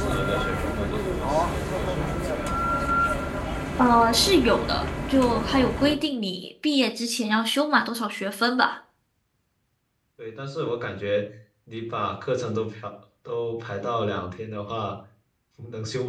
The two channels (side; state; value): both; identical; correlation 1.00